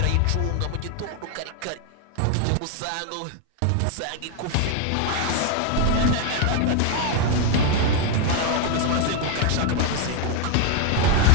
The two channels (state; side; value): different; both; correlation 0.01